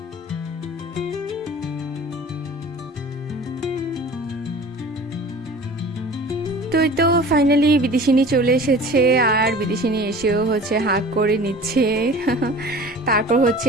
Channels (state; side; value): normal; both; correlation 0.42